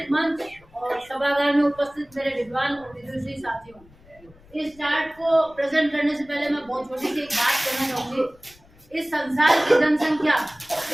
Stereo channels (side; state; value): left; noise; rumble, 27 dB below the sound